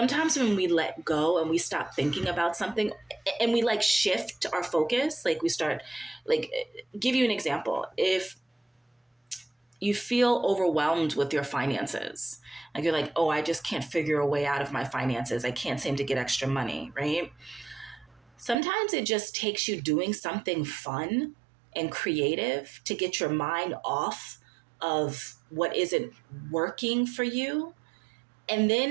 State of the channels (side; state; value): left; drops out; at 18.6 s